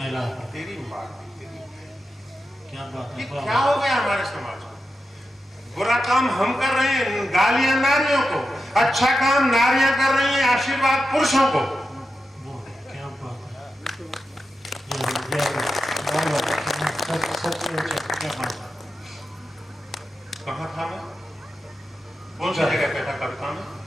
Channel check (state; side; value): normal; both; correlation 0.90